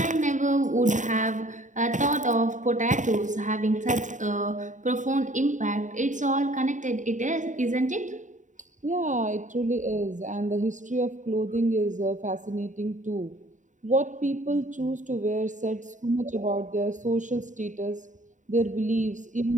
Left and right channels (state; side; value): late; left; 0.36 ms